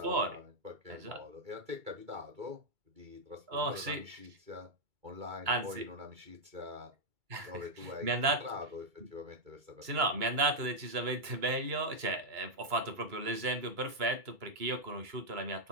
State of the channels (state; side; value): late; left; 2.3 ms